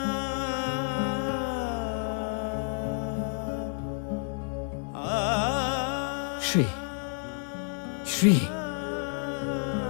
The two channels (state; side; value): silent; right; 58 dB below the other